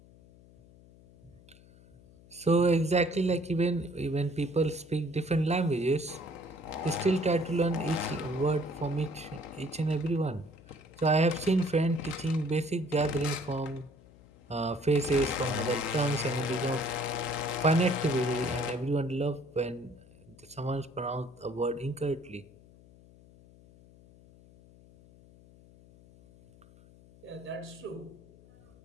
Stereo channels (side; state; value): left; noise; hum, 24 dB below the sound